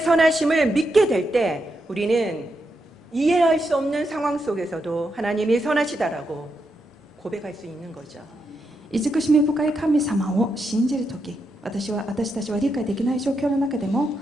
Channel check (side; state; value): both; normal; correlation 0.83